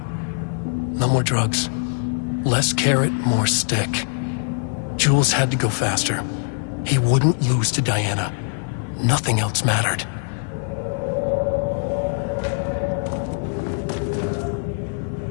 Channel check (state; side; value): silent; right; 56 dB below the other